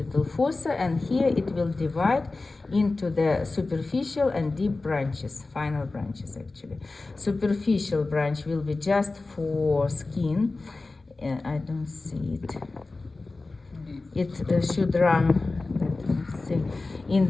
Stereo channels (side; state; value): right; quieter; 3.4 dB